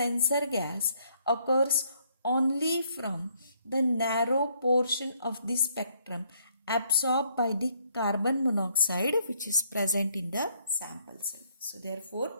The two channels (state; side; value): inverted; both; correlation -0.69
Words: gas occurs only from the narrow portion of the spectrum absorbed by the carbon monoxide which is present in the sample cell. So therefore,